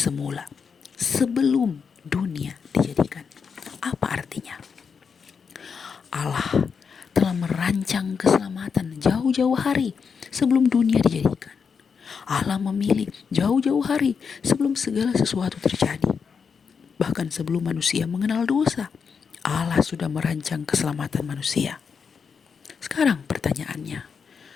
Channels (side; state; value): right; quieter; 6.0 dB